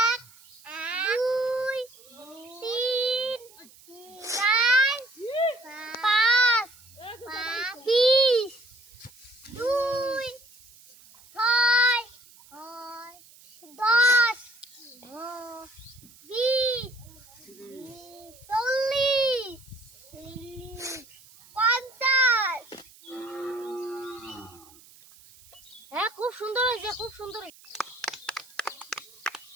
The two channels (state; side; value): noise; right; hiss, 24 dB below the sound